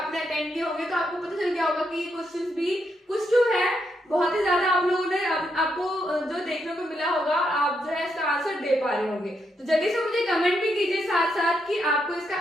अटेंड किए होंगे तो आपको पता चल गया होगा कि ये क्वेश्चंस भी कुछ जो है बहुत ही ज्यादा आप लोगों ने आपको जो देखने को मिला होगा, आप जो है इसका आंसर दे पा रहे होंगे। तो जल्दी से मुझे कमेंट भी कीजिए साथ साथ कि आपको इसका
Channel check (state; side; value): normal; both; correlation 0.80